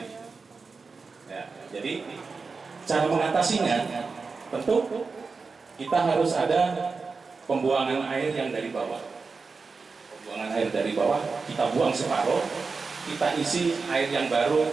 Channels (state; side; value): quieter; left; 4.5 dB